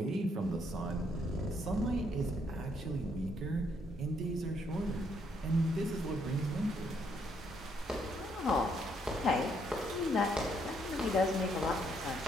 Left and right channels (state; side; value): normal; both; correlation 0.72